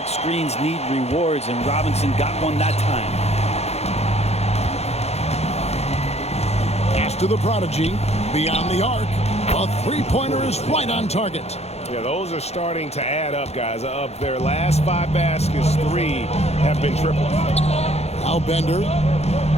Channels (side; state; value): right; late; 0.31 ms